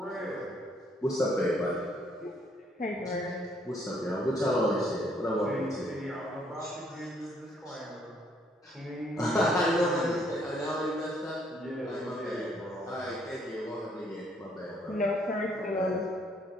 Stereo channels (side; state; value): both; normal; correlation 0.67